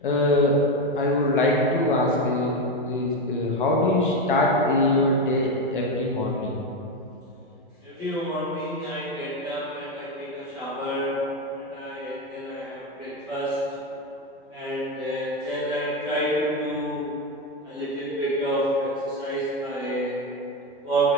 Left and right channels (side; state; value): both; normal; correlation 0.12